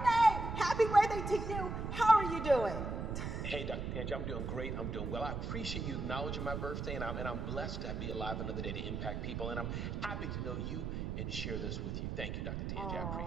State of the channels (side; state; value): right; noise; rumble, 3 dB below the sound